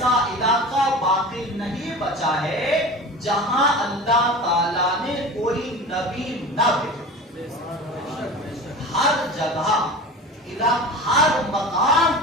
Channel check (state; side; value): normal; both; correlation 0.34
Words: علاقہ باقی نہیں بچا ہے جہاں اللہ تعالیٰ نے کوئی نبی نہ بھیجا. ہر جگہ ہر مقام